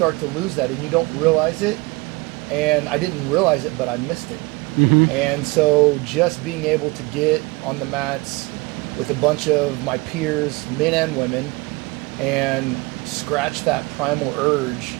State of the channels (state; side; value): quieter; left; 24.8 dB